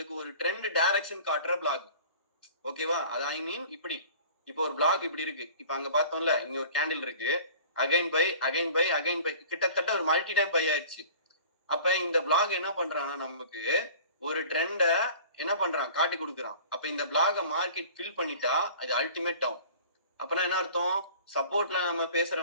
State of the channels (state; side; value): inverted; both; correlation -0.44